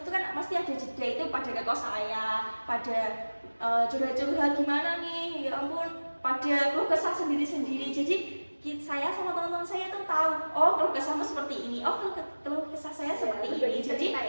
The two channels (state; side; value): inverted; both; correlation -1.00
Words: itu kan pasti ada jeda, itu pada ke kos saya, pada curhat-curhat gimana nih, ya ampun, pada keluh kesah sendiri-sendiri. Jadi saya sama teman-teman saya tuh tahu, oh keluh kesahmu seperti ini, oh keluh kesah saya seperti ini. Jadi